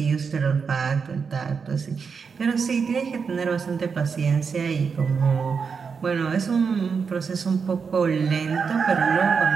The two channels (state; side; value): quieter; left; 5.7 dB